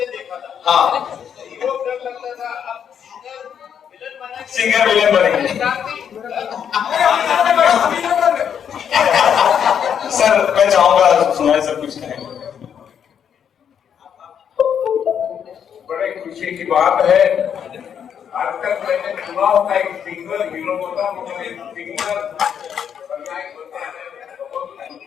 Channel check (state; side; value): quieter; right; 8.2 dB